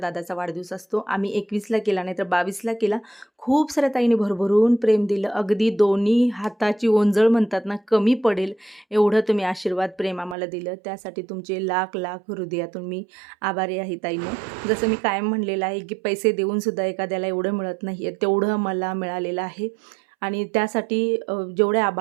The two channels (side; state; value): left; drops out; at 10.4 s